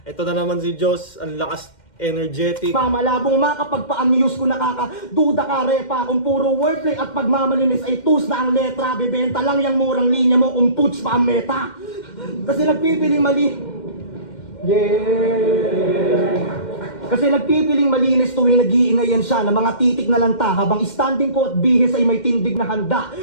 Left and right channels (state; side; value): late; right; 2.1 ms